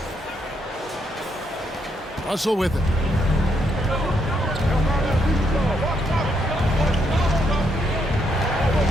Russell with it.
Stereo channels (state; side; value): normal; both; correlation 0.76